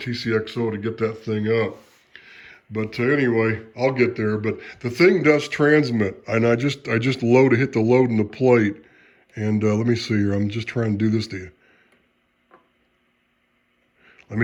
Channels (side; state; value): both; identical; correlation 1.00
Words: to get that thing up. But anyway, I'll get there. But the thing does transmit, and I just hit the load in the plate, and let me see here. I'm just trying to do this to you. Let